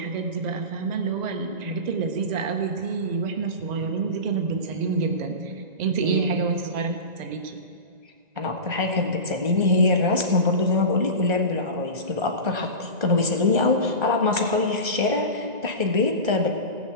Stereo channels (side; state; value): left; late; 1.9 ms